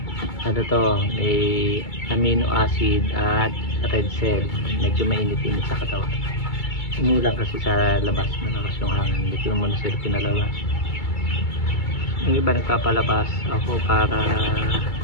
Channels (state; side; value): late; right; 2.3 ms